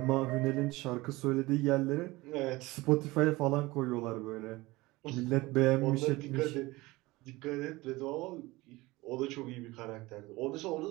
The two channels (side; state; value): left; quieter; 20.8 dB